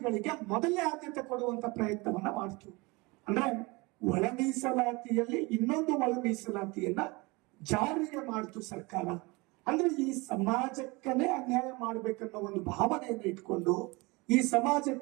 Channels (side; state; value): left; quieter; 25.2 dB